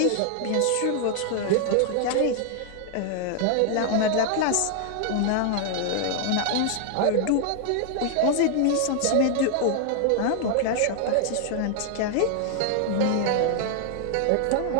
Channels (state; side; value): different; both; correlation 0.00